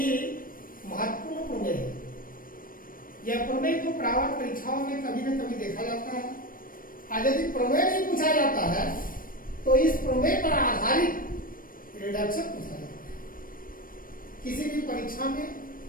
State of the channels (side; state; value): right; late; 0.41 ms